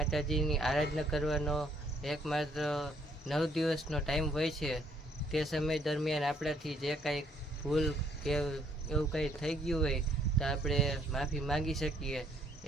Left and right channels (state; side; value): normal; both; correlation 0.66